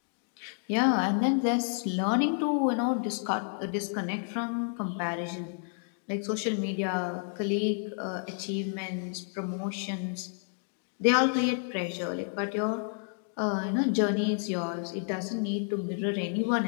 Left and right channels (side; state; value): right; silent; 58 dB below the other